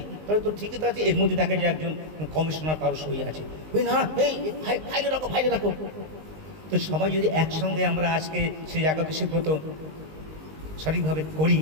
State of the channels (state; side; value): late; left; 19 ms